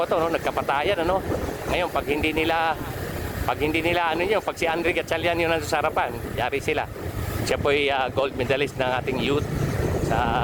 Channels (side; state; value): both; identical; correlation 1.00